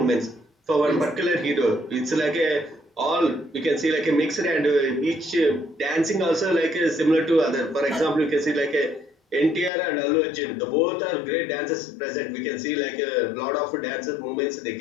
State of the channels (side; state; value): right; drops out; at 9.7 s